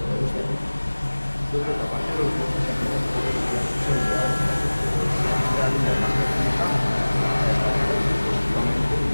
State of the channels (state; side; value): inverted; both; correlation -1.00